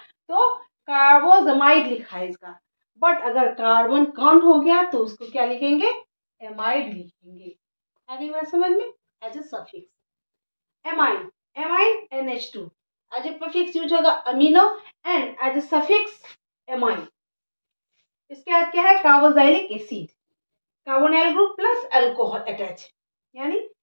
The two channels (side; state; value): both; inverted; correlation -1.00